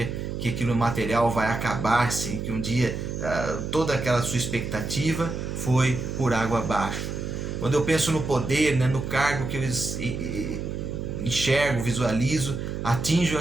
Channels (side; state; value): right; noise; hum, 5 dB below the sound